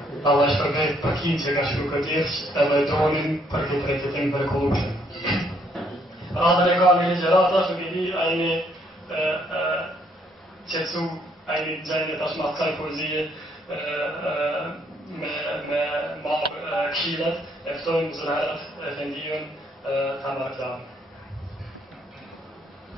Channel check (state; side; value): normal; both; correlation 0.68